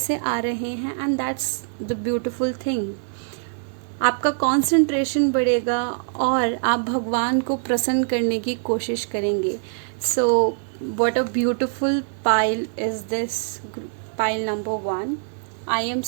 आ रहे हैं and that's the beautiful thing. आपका कंसंट्रेशन बढ़ेगा और आप भगवान को प्रसन्न करने की कोशिश करेंगे। So what a beautiful pile is this, pile number 1। I am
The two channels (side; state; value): left; silent; digital silence